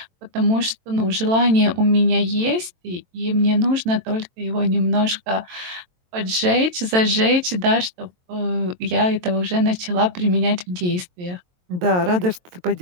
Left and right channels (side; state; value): left; late; 22 ms